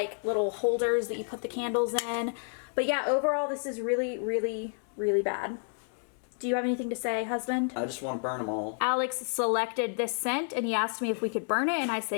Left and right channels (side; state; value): right; silent; 58 dB below the other